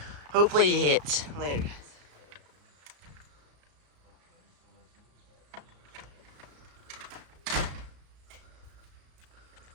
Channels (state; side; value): late; left; 34 ms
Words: Hopefully it hits. Later, guys.